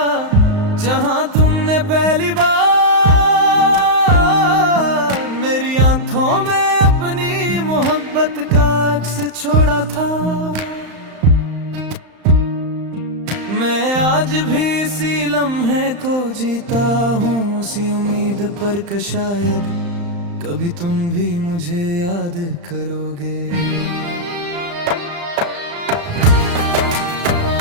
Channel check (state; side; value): late; left; 35 ms